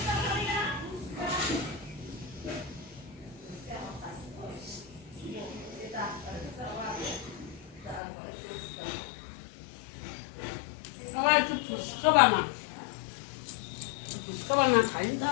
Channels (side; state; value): right; drops out; at 8.0 s